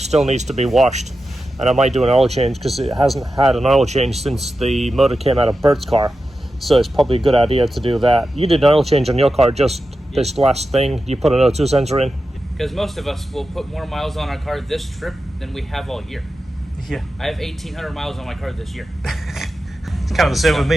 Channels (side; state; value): both; normal; correlation 0.91